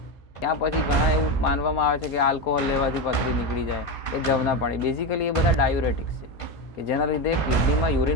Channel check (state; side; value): late; right; 1.5 ms